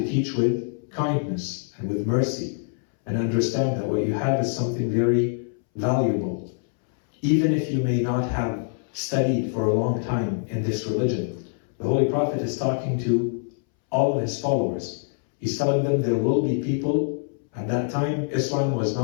teach with kindness and with mercy, and understand that what you have is something very valuable. Even if you may not have studied for a long time in this religion, the Holy Prophet is talking to all of his followers. He's telling them there will be people. At that time, Islam was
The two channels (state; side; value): silent; right; 62 dB below the other